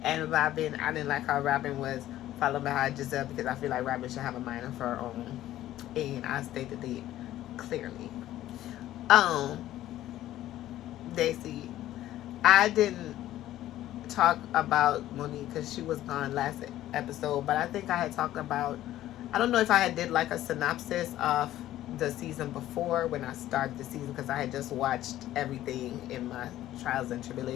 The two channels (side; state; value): right; quieter; 13.8 dB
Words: And Robin, I didn't like how Robin was following behind Giselle because I feel like Robin should have a mind of her own, and I stated it clearly. Daisy, I didn't talk about Monique because she was gone last episode, but I think I had talked about, I don't know if I had did like a synopsis of the season before when I started the season, because I had just watched everything in my trials and